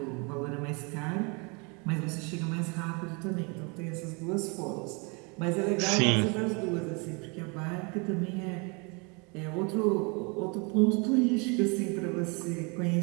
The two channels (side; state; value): left; quieter; 31.4 dB